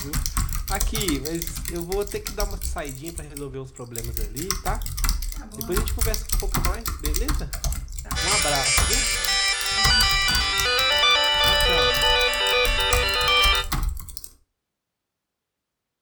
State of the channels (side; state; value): both; identical; correlation 1.00